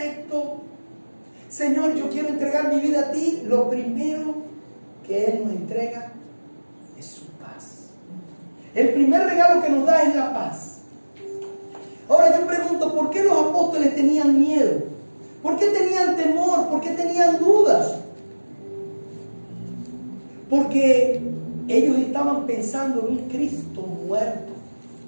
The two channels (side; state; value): both; inverted; correlation -1.00